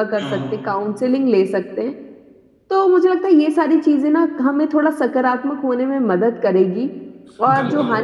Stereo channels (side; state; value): both; identical; correlation 1.00